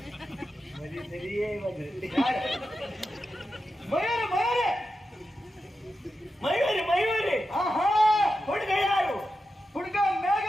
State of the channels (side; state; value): both; normal; correlation 0.90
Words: ಸರಿಯೇ ಮಯೂರಿ ಮಯೂರಿ ಮಯೂರಿ ಮಯೂರಿ. ಹುಡುಗ ಯಾರು? ಹುಡುಗ